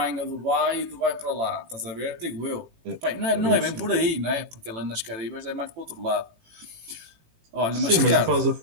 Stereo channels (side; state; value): left; late; 18 ms